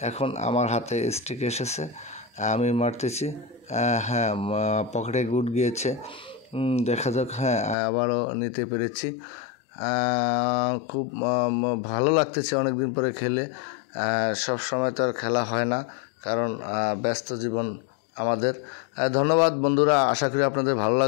এখন আমার হাতে স্টিক এসেছে, আমি মারতেছি। হ্যাঁ, পকেটে গুড গিয়েছে, দেখা যাক। হ্যাঁ, আবারও নিতে পেরেছি। খুব ভালো লাগতেছে অনেক দিন পরে খেলে। সব সময় তো আর খেলা হয় না, কারণ ব্যস্ত জীবন আমাদের। ধন্যবাদ বন্ধুরা, আশা করি আপনাদের ভালো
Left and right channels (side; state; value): right; drops out; at 7.8 s